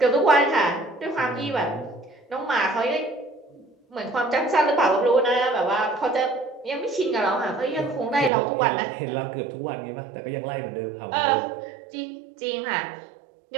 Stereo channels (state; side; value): drops out; left; at 8.3 s